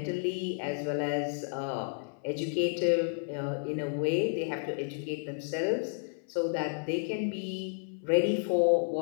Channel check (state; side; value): silent; right; 57 dB below the other